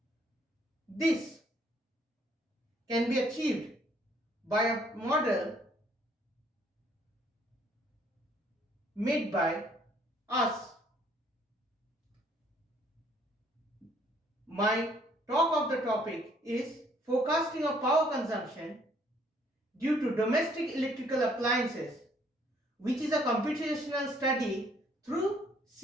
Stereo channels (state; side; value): normal; both; correlation 0.63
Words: This can be achieved by a model made by us. My talk of the topic is forecasting of power consumption due to domestic electrical appliances, which is a computational study through